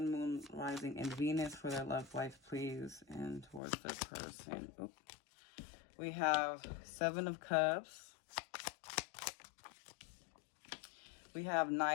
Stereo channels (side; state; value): right; drops out; at 3.6 s